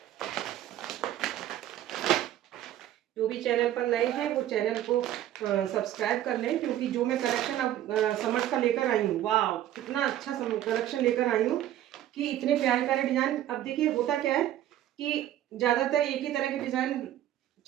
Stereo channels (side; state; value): left; quieter; 12.5 dB